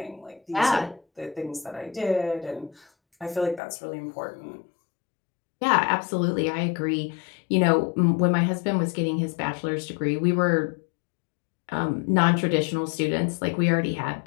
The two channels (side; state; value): right; drops out; at 3.6 s